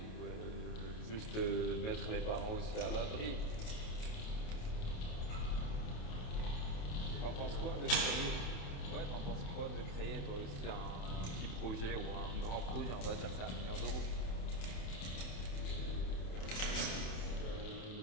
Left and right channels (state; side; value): late; right; 28 ms